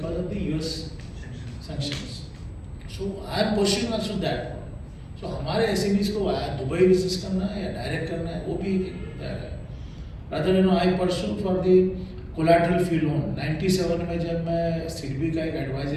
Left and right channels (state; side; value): identical; both; correlation 1.00